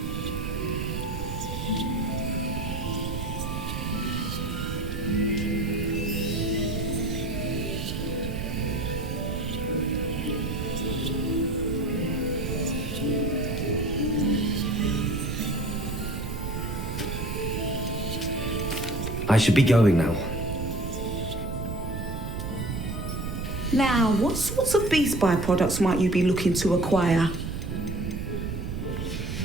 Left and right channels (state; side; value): noise; right; rumble, 4 dB below the sound